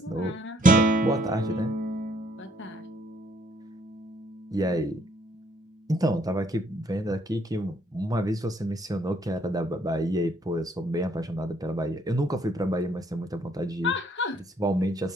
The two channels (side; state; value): both; normal; correlation 0.66